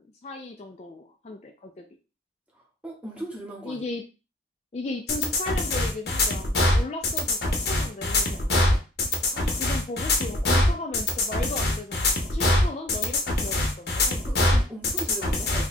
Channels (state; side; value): normal; both; correlation 0.54